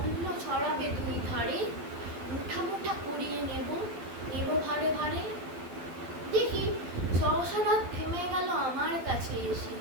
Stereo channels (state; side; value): late; left; 12 ms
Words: ছড়াবে দুই ধারে। মুঠা মুঠা করিয়ে নেব ভারে ভারে। দেখি সহসা রথ থেমে গেল আমার কাছে এসে।